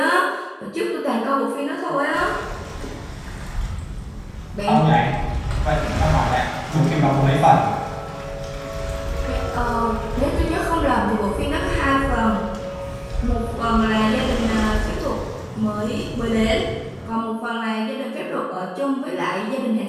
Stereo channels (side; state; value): both; identical; correlation 1.00